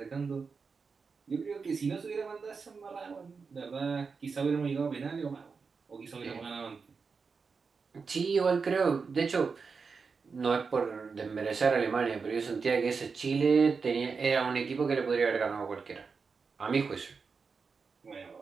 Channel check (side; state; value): left; quieter; 5.1 dB